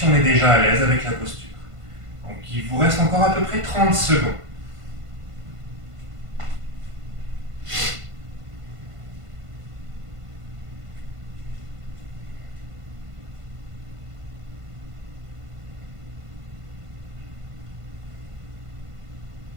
on est déjà à l'aise avec la posture. Donc il vous reste encore à peu près 30 secondes.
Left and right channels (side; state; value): left; late; 1.5 ms